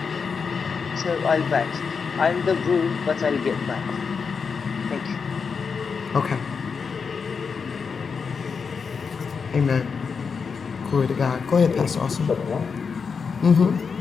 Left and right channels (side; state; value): right; quieter; 5.6 dB